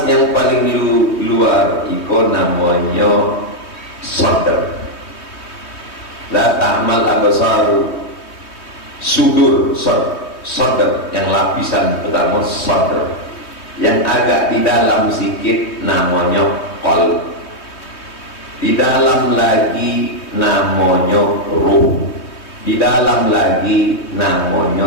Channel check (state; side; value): late; right; 3.2 ms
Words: yang paling luar itu namanya sadar. La ta'mal absaru, sudur, sadar, yang lapisan pertama sadar, yang agak di dalam sikit namanya qalb, di dalam lagi namanya ruh, di dalam lagi